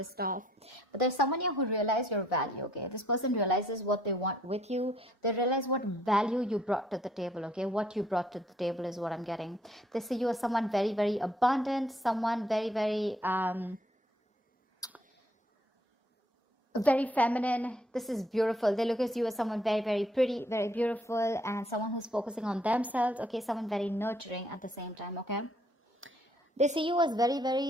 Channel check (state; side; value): normal; both; correlation 0.66